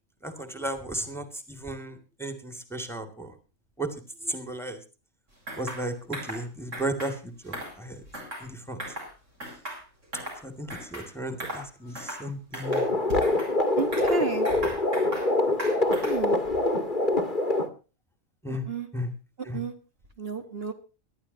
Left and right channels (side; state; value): both; normal; correlation 0.43